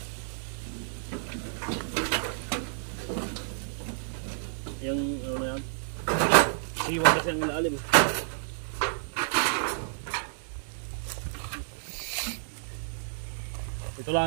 Yung ano na yan? Siwa kasi ang ilalim. Ito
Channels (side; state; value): left; silent; digital silence